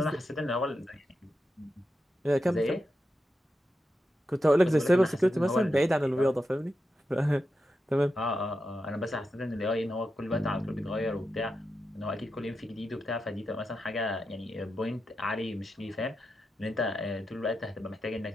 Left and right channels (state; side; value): normal; both; correlation 0.88